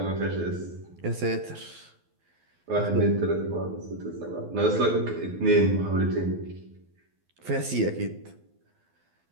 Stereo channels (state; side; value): late; left; 12 ms